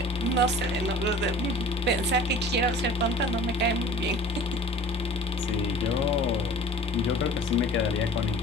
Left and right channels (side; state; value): both; normal; correlation 0.45